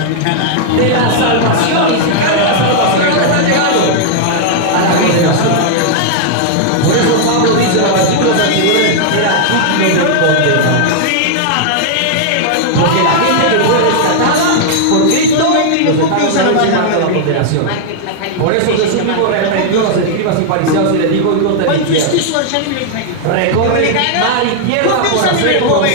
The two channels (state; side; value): different; both; correlation -0.01